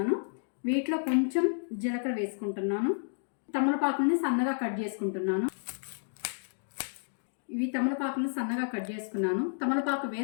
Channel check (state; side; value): silent; right; digital silence